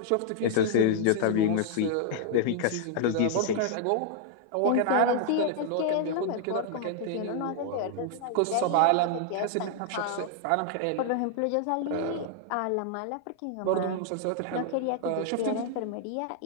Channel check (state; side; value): different; both; correlation 0.00